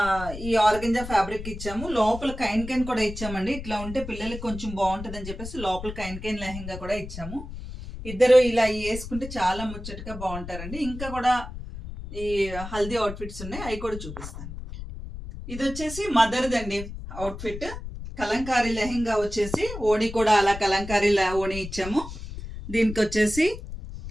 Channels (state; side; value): noise; left; rumble, 10 dB below the sound